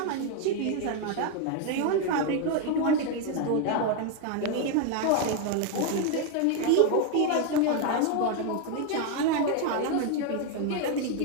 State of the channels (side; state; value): both; different; correlation 0.01